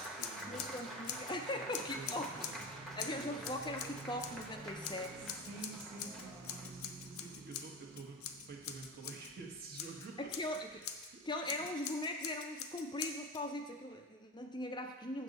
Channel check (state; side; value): normal; both; correlation 0.26